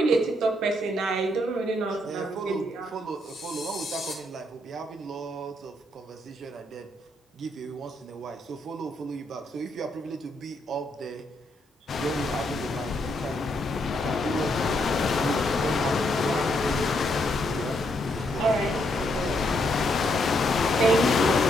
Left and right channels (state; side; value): normal; both; correlation 0.76